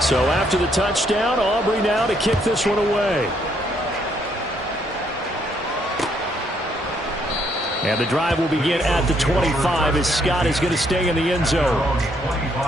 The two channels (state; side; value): normal; both; correlation 0.71